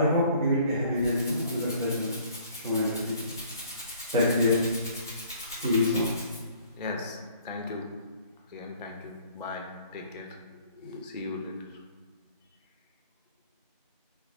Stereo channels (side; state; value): both; inverted; correlation -0.56